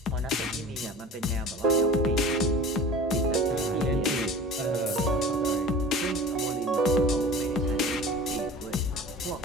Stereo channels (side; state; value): both; normal; correlation 0.39